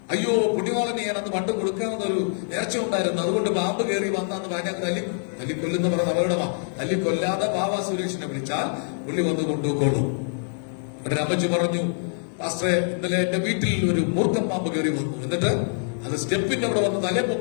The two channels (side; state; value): right; silent; digital silence